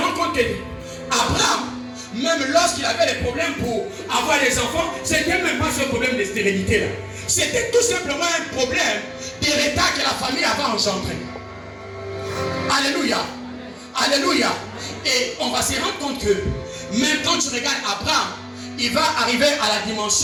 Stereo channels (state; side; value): identical; both; correlation 1.00